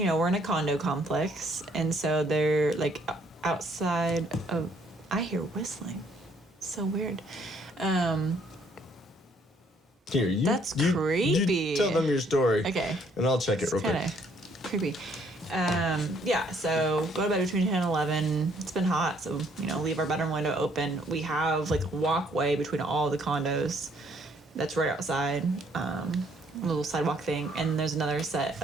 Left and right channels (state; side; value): normal; both; correlation 0.66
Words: in a condo complex. And so they're outside of. I hear whistling. So weird. Here, that's creepy. You tell them your story. Okay. And I'll check it real quick. Kind of creepy. So go to bed between 10 and 11. It's been hot, so, leave our bedroom window open. We have, a walkway between all the condos that's right outside, a little sidewalk thing. And there's another set